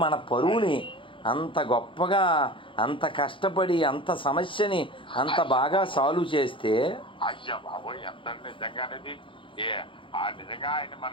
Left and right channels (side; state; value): right; late; 0.25 ms